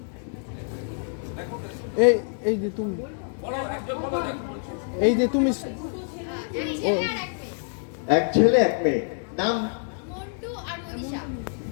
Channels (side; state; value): right; silent; 61 dB below the other